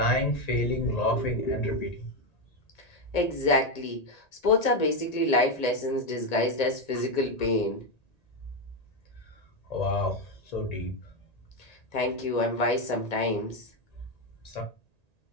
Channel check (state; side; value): late; right; 1.9 ms